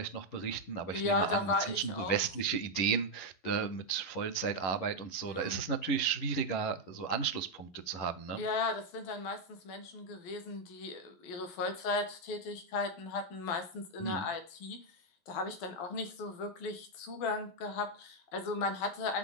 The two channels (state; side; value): late; right; 12 ms